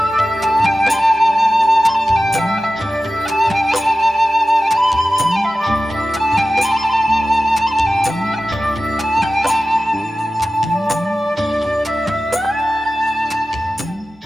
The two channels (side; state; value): both; normal; correlation 0.95